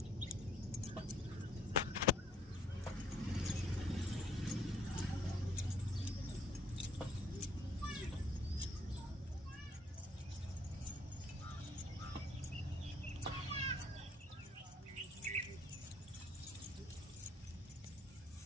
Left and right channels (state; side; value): normal; both; correlation 0.64